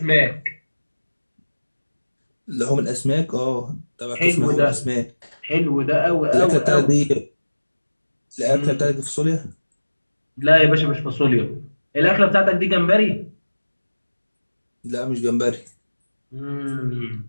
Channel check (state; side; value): inverted; both; correlation -1.00